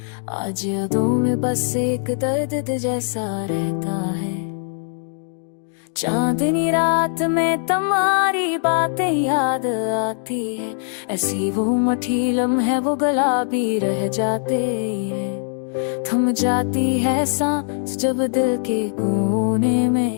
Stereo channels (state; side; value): silent; right; 65 dB below the other